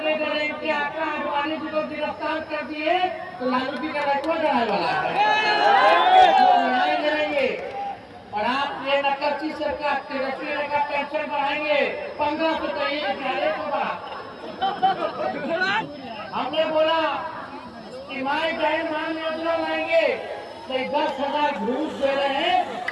डरे कि आका अडवाणी जी को गिरफ्तार कर दिए तो लालू जी का रखवा डराने वाला है न्याय करेंगे और आप ये नकलची सरकार तेजस्वी का पेंशन बढ़ाएंगे 1500 तो ये ज्यादा को बढ़ा हमने बोला कि माए बहन मान योजना लाएंगे तो 10,000 घूस दे रहे हैं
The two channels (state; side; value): identical; both; correlation 1.00